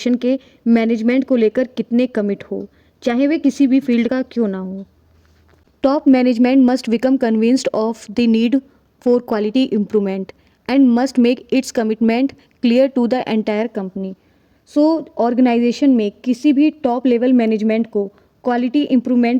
के management को लेकर कितने commit हो, चाहे वे किसी भी फील्ड का क्यों ना हो। Top management must become convinced of the need for quality improvement and must make its commitment clear to the entire company. So organisation में किसी भी टॉप लेवल मैनेजमेंट को क्वालिटी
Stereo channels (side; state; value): both; identical; correlation 1.00